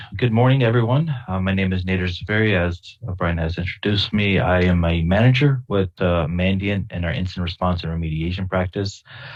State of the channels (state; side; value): identical; both; correlation 1.00